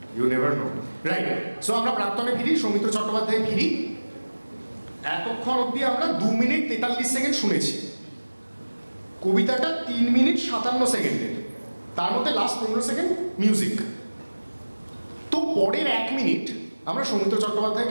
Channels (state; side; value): inverted; both; correlation -1.00